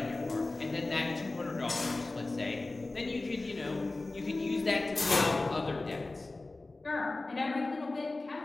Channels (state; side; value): quieter; right; 3.2 dB